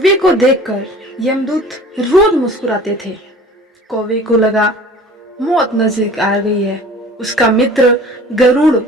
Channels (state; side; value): normal; both; correlation 0.45